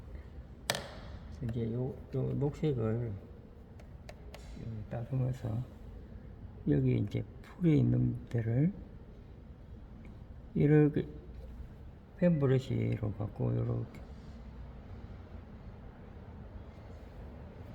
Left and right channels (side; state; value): both; identical; correlation 1.00